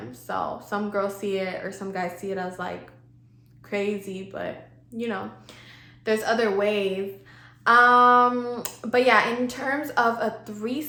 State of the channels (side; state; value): both; identical; correlation 1.00